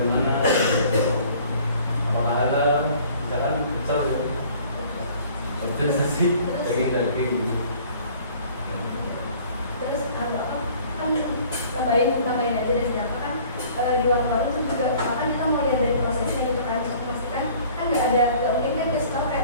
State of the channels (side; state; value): both; inverted; correlation -0.52